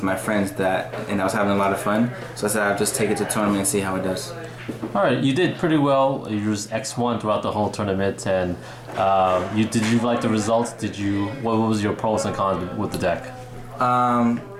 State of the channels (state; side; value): identical; both; correlation 1.00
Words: my friends and I was having a lot of fun. So I said I'll just take it to tournament and see how it does. Alright, you did pretty well. You used X1 throughout the whole tournament, and did you like the results? What was your pros and cons with the deck?